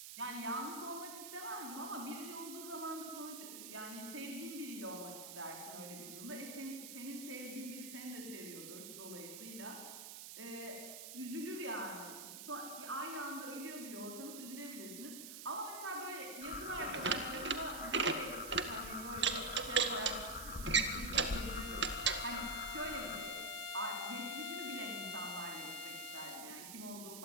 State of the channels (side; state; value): right; noise; hiss, 9 dB below the sound